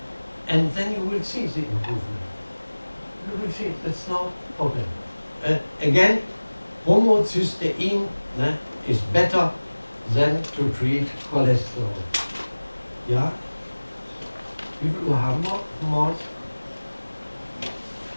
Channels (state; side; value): inverted; both; correlation -1.00